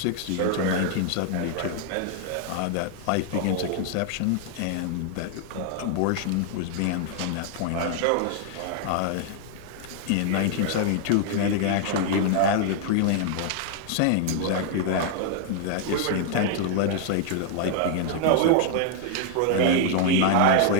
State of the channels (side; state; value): both; different; correlation 0.00